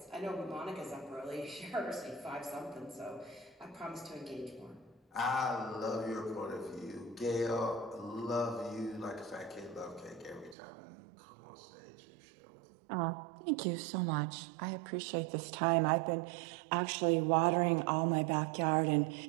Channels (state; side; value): drops out; left; at 10.6 s